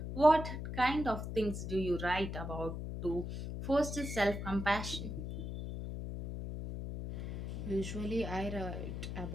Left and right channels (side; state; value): left; noise; hum, 5 dB below the sound